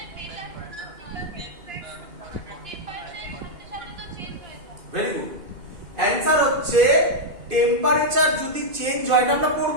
Very good. অ্যান্সার হচ্ছে টেম্পারেচার যদি চেঞ্জ হয়, এটা আমরা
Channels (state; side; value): late; left; 2.6 ms